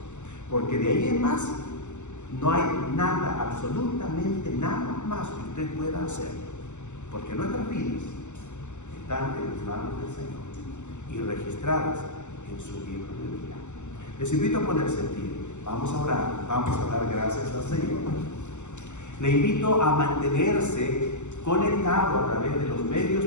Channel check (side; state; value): right; late; 0.84 ms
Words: Porque de ahí en más, no hay nada, absolutamente nada más que usted pueda hacer. Porque nuestras vidas están en las manos del Señor y registradas en su libro de vida. Les invito a ponerse en pie. Vamos a orar, vamos a dar gracias al Señor. Le invito a mantenerse conectado a través de los medios